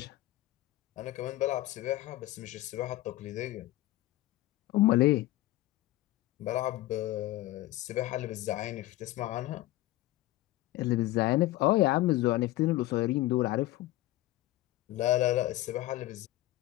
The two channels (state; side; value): quieter; right; 16.8 dB